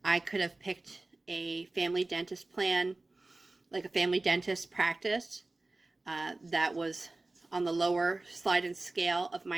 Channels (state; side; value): quieter; left; 3.0 dB